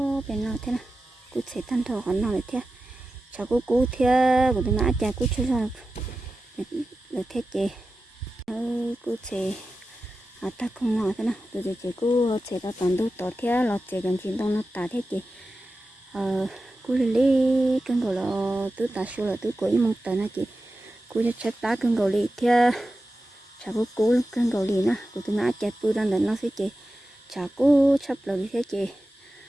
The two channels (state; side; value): normal; both; correlation 0.93